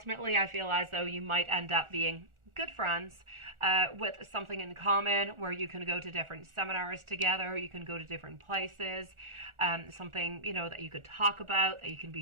I feel as though you might end up being good friends with something in common where you can go to different seminars together, you can go to different places, something, you know, that you could talk about, that you can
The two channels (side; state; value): left; late; 1.4 ms